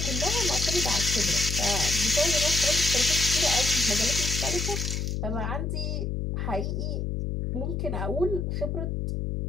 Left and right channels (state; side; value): noise; left; hum, 2 dB below the sound